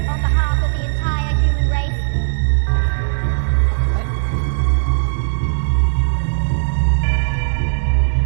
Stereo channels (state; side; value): silent; left; digital silence